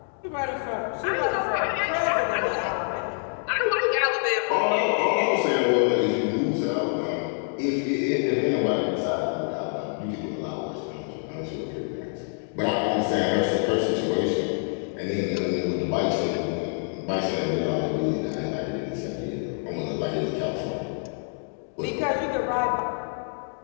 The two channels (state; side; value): silent; right; 56 dB below the other